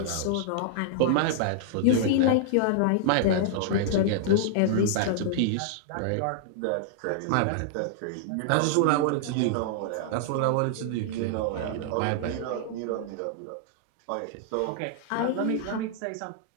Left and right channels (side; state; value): both; different; correlation -0.01